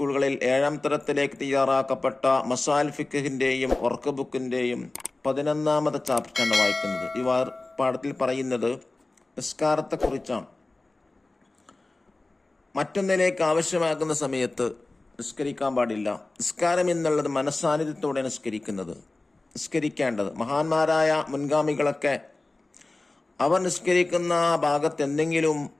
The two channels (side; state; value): right; quieter; 3.0 dB